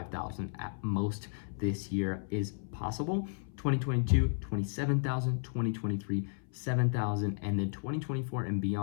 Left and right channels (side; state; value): right; silent; 55 dB below the other